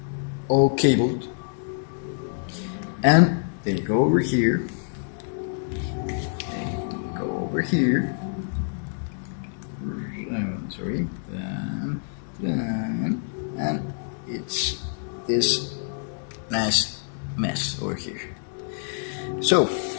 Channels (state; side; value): silent; right; digital silence